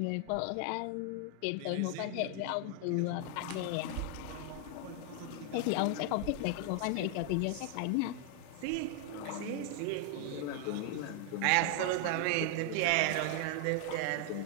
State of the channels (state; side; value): different; both; correlation 0.00